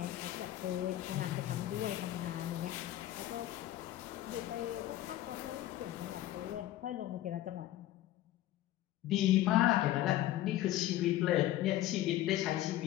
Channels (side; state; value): right; quieter; 14.2 dB